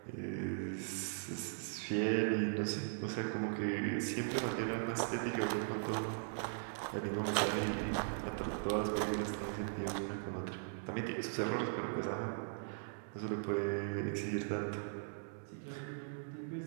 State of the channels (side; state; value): left; silent; digital silence